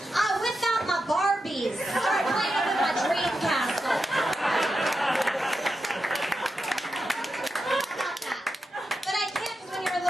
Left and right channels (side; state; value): both; normal; correlation 0.88